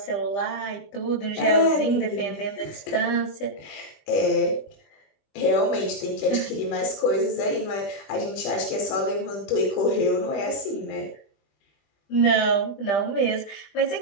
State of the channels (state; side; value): late; right; 21 ms